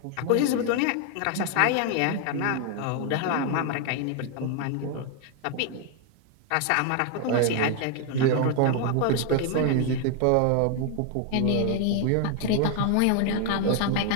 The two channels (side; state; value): both; different; correlation 0.00